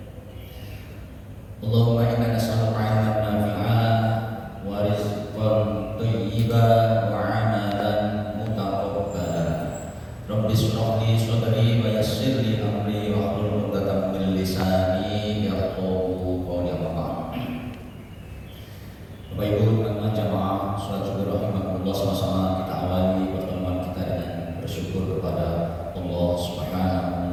Allahumma inna nas'aluka 'ilman nafi'an wa rizqan thayyiban wa 'amalan mutaqabbalan. Rabbi shrah li sadri wa yassir li amri wa hlul 'uqdatam min lisani yafqahu qawli. Bapak Ibu teman-teman jamaah salat zuhur rahimakumullah, sama-sama kita awali pertemuan kita dengan bersyukur kepada Allah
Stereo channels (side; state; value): both; identical; correlation 1.00